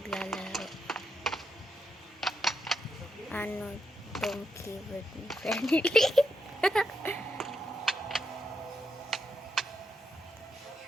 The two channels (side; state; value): both; normal; correlation 0.83